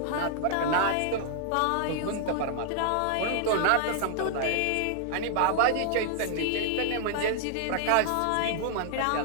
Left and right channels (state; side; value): different; both; correlation 0.00